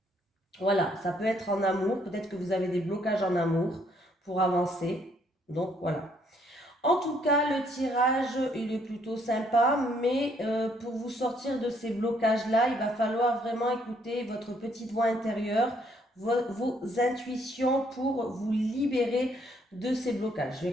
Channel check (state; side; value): normal; both; correlation 0.68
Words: Voilà, ça peut être en amour, peut-être que vous avez des blocages en amour pour avancer. Donc voilà. En tout cas, le tirage, il est plutôt sympa, mais pour vous sortir de ces blocages-là, il va falloir vraiment écouter votre petite voix intérieure, vos intuitions pour vous libérer de ces blocages. Je vais